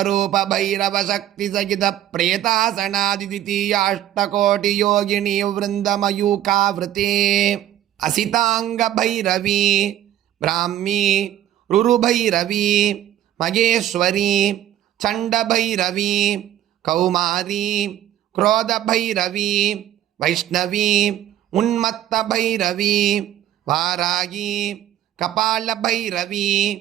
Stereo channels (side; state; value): left; quieter; 12.1 dB